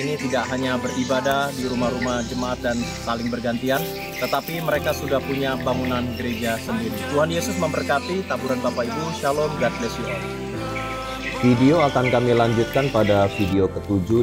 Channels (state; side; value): identical; both; correlation 1.00